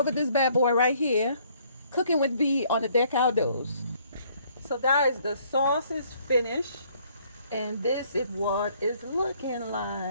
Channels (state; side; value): inverted; both; correlation -0.63